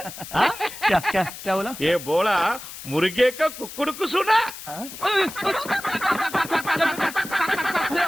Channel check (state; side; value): noise; left; hiss, 12 dB below the sound